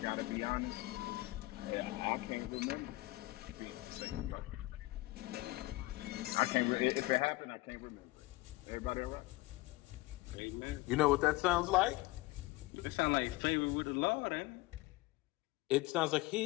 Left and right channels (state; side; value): quieter; right; 20.5 dB